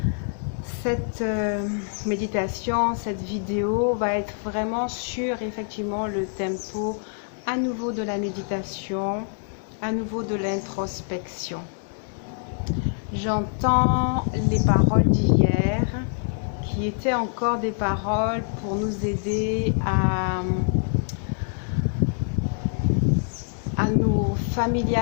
Cette méditation, cette vidéo va être vraiment sur effectivement le tempo à nouveau de la méditation, à nouveau de l'introspection. J'entends les paroles d'hier qui étaient encore des paroles pour nous aider à nous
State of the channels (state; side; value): silent; right; 62 dB below the other